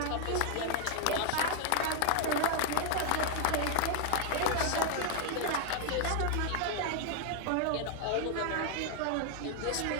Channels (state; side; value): different; both; correlation 0.00